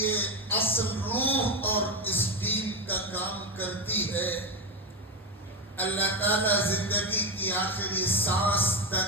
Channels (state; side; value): normal; both; correlation 0.12